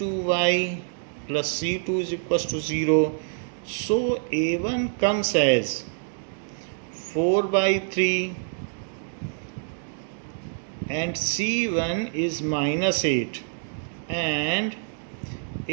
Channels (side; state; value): left; silent; digital silence